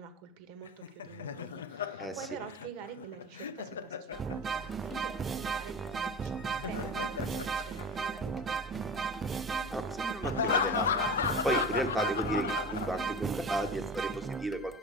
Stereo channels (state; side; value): normal; both; correlation 0.32